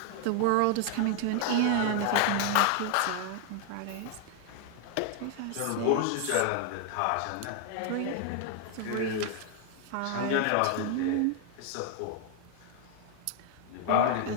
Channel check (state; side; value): different; both; correlation 0.00